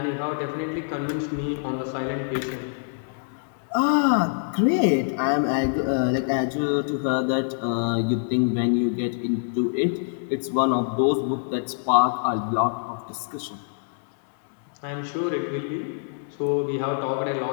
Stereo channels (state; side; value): silent; right; digital silence